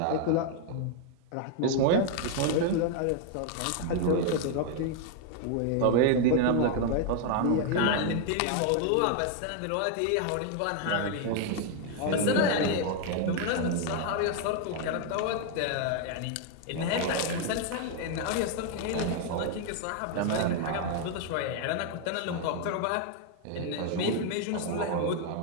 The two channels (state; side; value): different; both; correlation 0.00